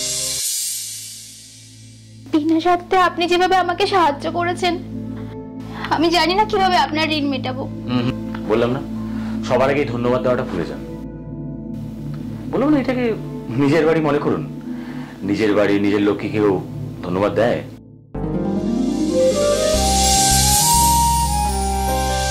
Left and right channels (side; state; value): both; identical; correlation 1.00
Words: বিনা স্বার্থে আপনি যেভাবে আমাকে সাহায্য করেছেন, আমি জানি না কিভাবে আপনার ঋণ মেটাবো। বললাম না, সবার আগে ধন্যবাদ দেওয়াটা ভুলে যান। বললাম না, এটাকে নিজের বাড়ি মনে করুন। নিজের বাড়ি, নিজের লোককে কেউ ধন্যবাদ দেয়?